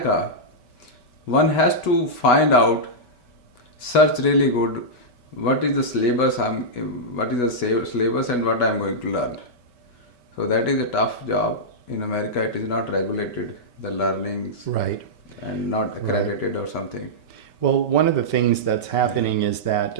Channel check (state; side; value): late; right; 5.2 ms